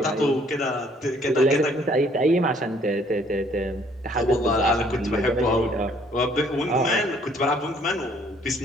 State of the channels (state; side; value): normal; both; correlation 0.62